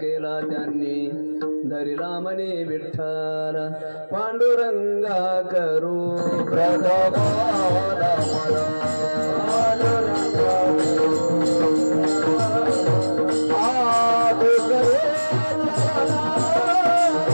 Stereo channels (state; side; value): inverted; both; correlation -1.00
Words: केला त्यांनी धरिला मने विठ्ठल पांडुरंगा करू प्रथमाला मला